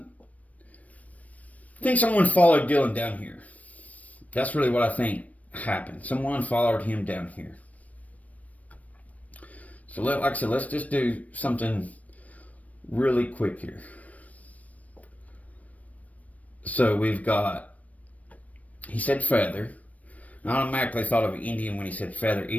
someone followed Dylan down here. That's really what I think happened. Someone followed him down here. So like I said, let's just do something really quick here. So we've got, he said feather. I automatically thought of Indian when he said feather,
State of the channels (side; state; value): right; late; 0.069 ms